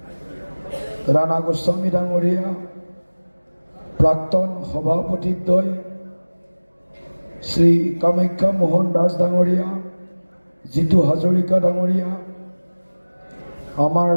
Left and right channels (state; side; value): inverted; both; correlation -1.00